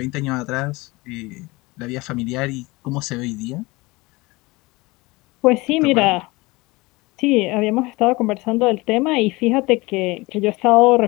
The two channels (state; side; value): quieter; right; 22.8 dB